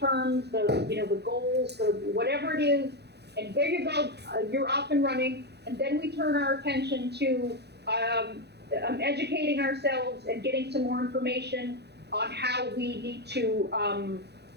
the goals, the whatever it is, and there you go, you're off and running. And then we turn our attention to educating ourselves and getting some more information on how we need to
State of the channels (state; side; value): late; left; 0.48 ms